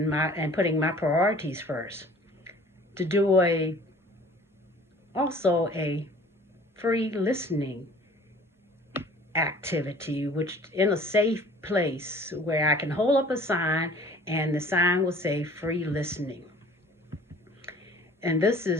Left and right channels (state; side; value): normal; both; correlation 0.49